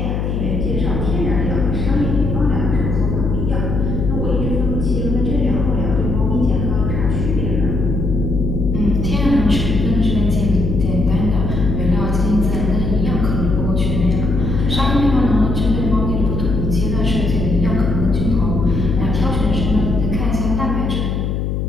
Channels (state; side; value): noise; left; hum, 1 dB below the sound